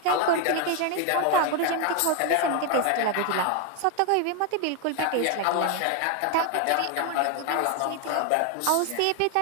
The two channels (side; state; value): both; different; correlation 0.01